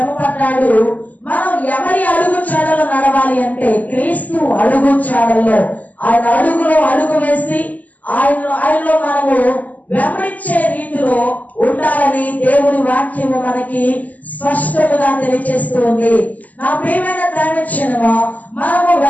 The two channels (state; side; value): late; right; 0.078 ms